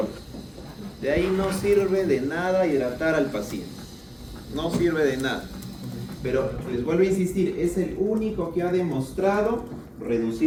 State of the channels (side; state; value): both; identical; correlation 1.00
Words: De ahí no sirve de nada hidratar al paciente. No sirve de nada. Pero les vuelvo a insistir, es el único que ha demostrado